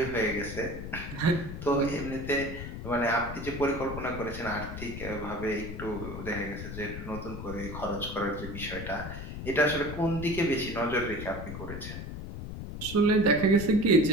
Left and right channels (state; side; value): noise; left; rumble, 8 dB below the sound